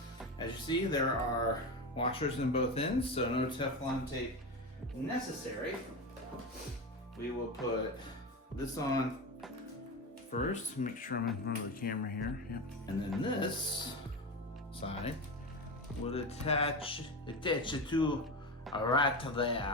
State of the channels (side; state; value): both; normal; correlation 0.20